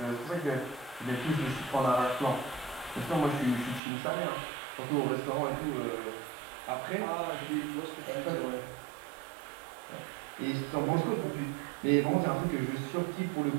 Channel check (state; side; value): drops out; left; at 3.8 s